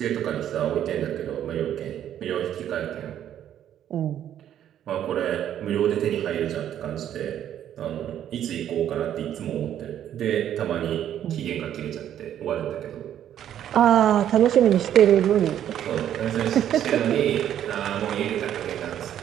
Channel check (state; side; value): quieter; left; 10.6 dB